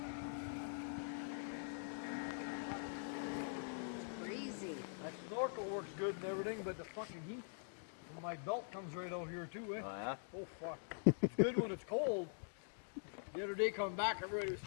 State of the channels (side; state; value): right; silent; digital silence